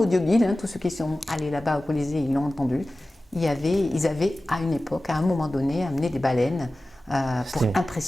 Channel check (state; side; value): normal; both; correlation 0.96